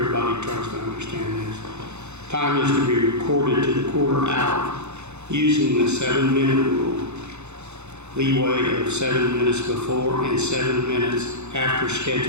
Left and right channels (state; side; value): late; left; 0.82 ms